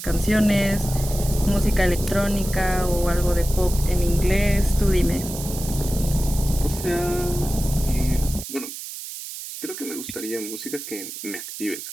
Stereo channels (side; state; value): right; noise; hiss, 10 dB below the sound